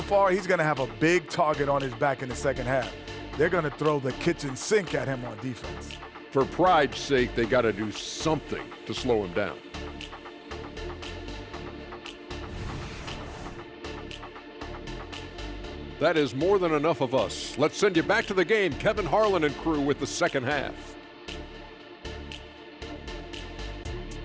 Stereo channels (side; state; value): both; identical; correlation 1.00